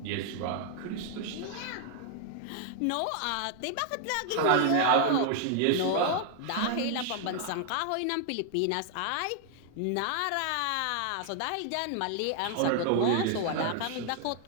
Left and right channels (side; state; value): both; different; correlation 0.00